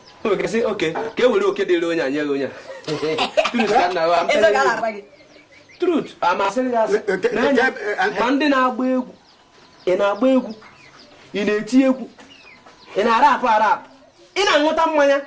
O ga-esi oke ka e were oke dịrị onye anya onye. Truth ka na wa. Eze ga na-agwa gị. Truth amasịrị ya ma ndị na-agba egwu ị na-agba egwu ị na-eti egwu ị na-arapụ ị na-aṅụta mmanya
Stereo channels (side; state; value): both; identical; correlation 1.00